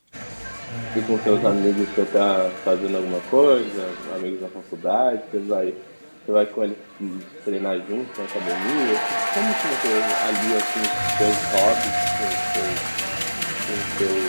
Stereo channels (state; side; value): inverted; both; correlation -1.00